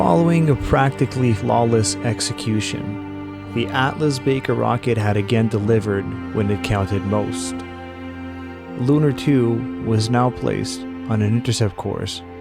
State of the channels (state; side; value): identical; both; correlation 1.00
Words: a practically flawless execution, the Atlas Baker rocket had again delivered when it counted most. Lunar 2 was now placed on an intercept course